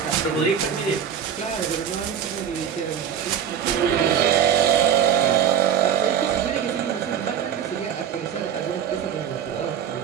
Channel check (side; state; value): left; quieter; 8.7 dB